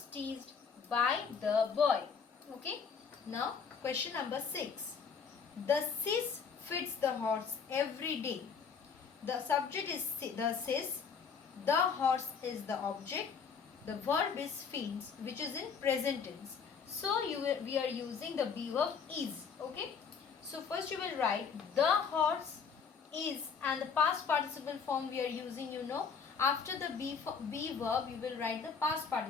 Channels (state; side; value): quieter; right; 6.1 dB